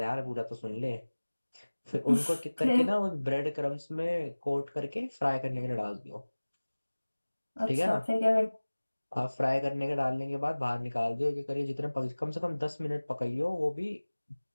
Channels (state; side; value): inverted; both; correlation -1.00